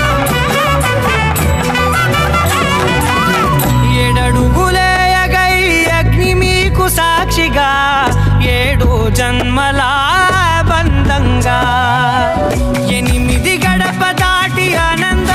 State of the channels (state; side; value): identical; both; correlation 1.00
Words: ఏడడుగులేయగై అగ్ని మీకు సాక్షిగా ఏడు జన్మల బంధంగా 8 గడప దాటి